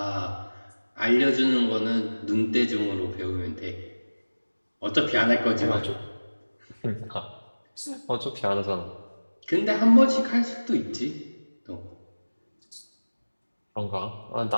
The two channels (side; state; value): both; inverted; correlation -1.00